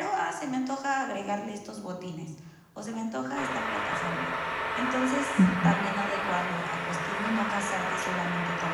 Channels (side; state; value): both; identical; correlation 1.00